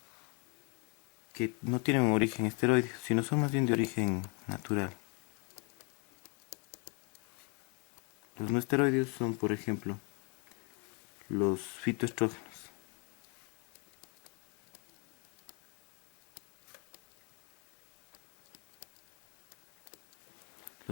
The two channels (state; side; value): quieter; right; 33.5 dB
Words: que no tienen un origen esteroideo, sino son más bien de origen natural. Los no esteroideos son, por ejemplo, los fitoestrógenos.